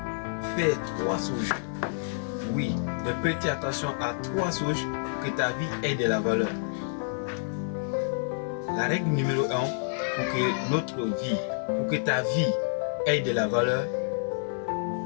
faire 3 choses, oui, de prêter attention à 3 choses pour que ta vie ait de la valeur. La règle numéro 1 pour que notre vie, pour que ta vie ait de la valeur,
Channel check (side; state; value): right; silent; 59 dB below the other